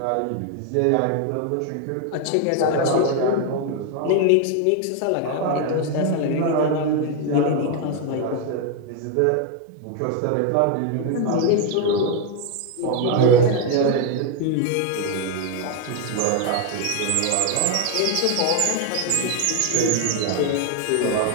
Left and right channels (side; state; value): both; different; correlation 0.01